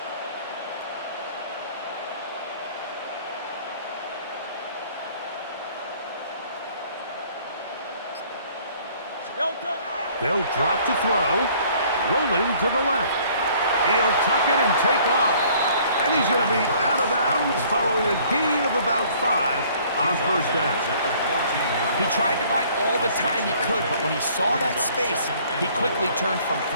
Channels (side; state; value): both; inverted; correlation -0.57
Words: They'll drop to throw. Rolling to the left. He'll tuck it and take off. And he's going to be out of bounds following a gain of about 5 on 1st down. He tried to buy all the time he could, but when he saw that space, he quickly turned from